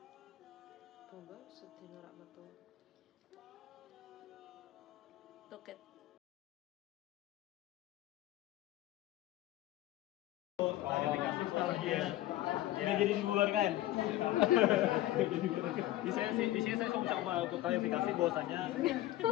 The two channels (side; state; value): right; quieter; 15.3 dB